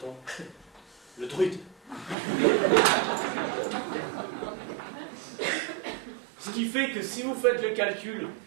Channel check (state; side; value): drops out; left; at 2.1 s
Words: le druide. Ce qui fait que si vous faites le calcul,